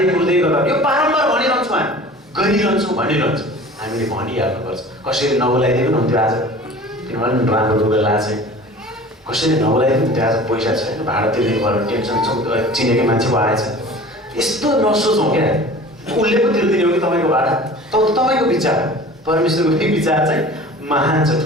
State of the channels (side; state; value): both; normal; correlation 0.42